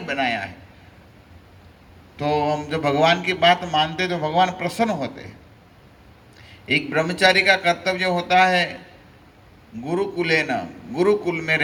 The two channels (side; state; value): both; identical; correlation 1.00